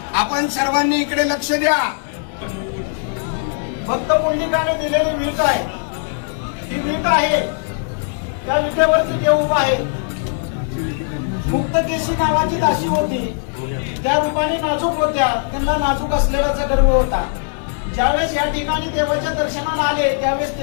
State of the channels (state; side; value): silent; right; digital silence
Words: आपण सर्वांनी इकडे लक्ष द्या. भक्त पुंडलिकाने दिलेली वीट आहे, ही वीट आहे. त्या विटेवरती देव उभा आहे. मुक्तकेशी नावाची दासी होती, त्या रूपाने नाजूक होत्या, त्यांना नाजूक असलेलाचा गर्व होता. ज्यावेळेस या ठिकाणी देवाच्या दर्शनाला आले त्यावेळेस